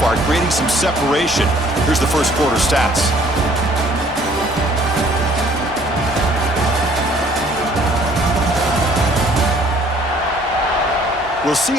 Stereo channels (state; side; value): normal; both; correlation 0.58